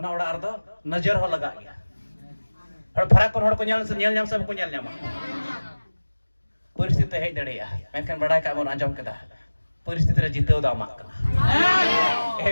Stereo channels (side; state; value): both; inverted; correlation -1.00